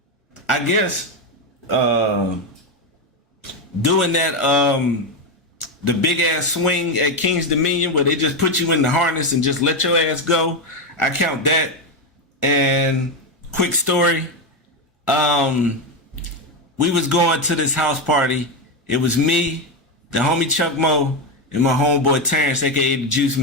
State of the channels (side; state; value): both; normal; correlation 0.10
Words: I guess doing that the big ass swing at King's Dominion where they just put you in the harness and just let your ass go. I count that. And quick story, we was going to this house party. It was me, the homie Chuck Moe, and my homeboy Terrence, aka the Juice